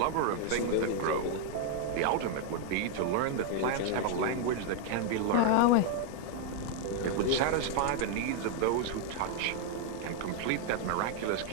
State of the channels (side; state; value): both; different; correlation 0.00